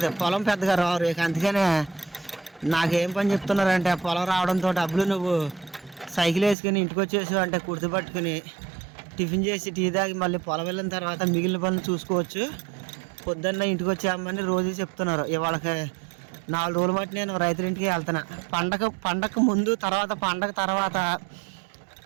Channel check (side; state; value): left; drops out; at 6.6 s